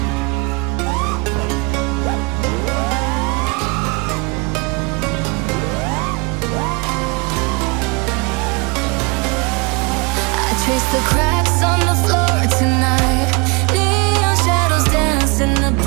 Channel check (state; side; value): quieter; left; 30.9 dB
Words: Trace the cracks on the floor tonight. Neon shadows dance in the